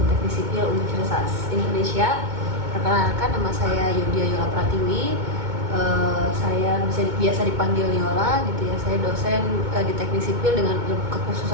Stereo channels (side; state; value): left; late; 2.2 ms